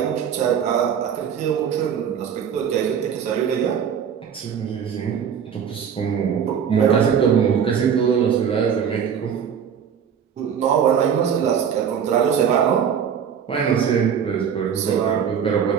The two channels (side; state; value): left; quieter; 7.8 dB